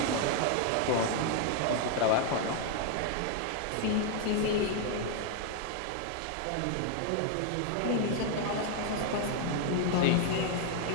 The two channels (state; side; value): different; both; correlation 0.00